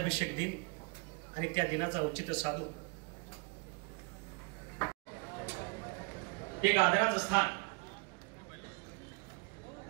दिन आणि त्या दिनाचा औचित्य साधून एक आदराचं स्थान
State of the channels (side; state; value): left; quieter; 32.0 dB